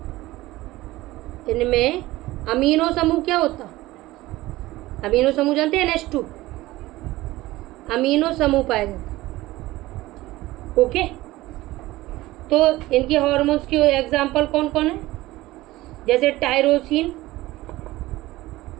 इनमें अमीनो समूह क्या होता, अमीनो समूह जानते हैं, NH2 अमीनो समूह पाया जाता है। ओके, तो इनके हार्मोन्स के एग्जाम्पल कौन कौन है, जैसे टायरोसिन,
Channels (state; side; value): quieter; left; 17.9 dB